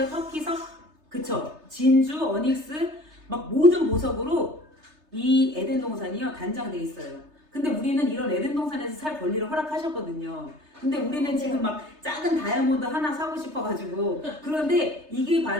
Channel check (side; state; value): left; late; 3.3 ms